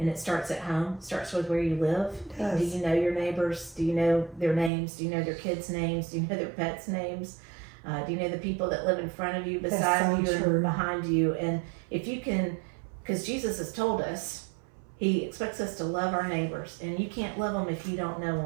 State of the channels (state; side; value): drops out; left; at 4.7 s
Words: it starts at home. It starts with where you live. Yes. Do you know your neighbors? Do you know their names? Do you know their kids' names? Do you know their pets' names? Do you know the people that live in front of you, beside you, and behind you? And if you can, because Jesus has told us, he expects us to love our neighbors, and you can't love them if you don't know